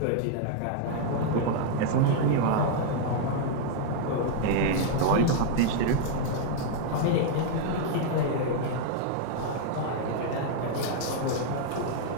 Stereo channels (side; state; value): both; different; correlation -0.01